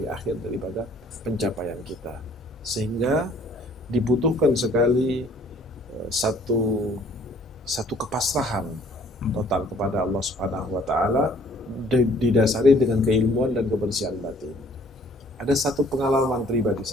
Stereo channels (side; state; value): both; normal; correlation 0.58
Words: akhir daripada pencapaian kita. Sehingga dibutuhkan sekali satu kepasrahan total kepada Allah Subhanahu wa Ta'ala, didasari dengan keilmuan dan kebersihan batin. Ada satu pengalaman pribadi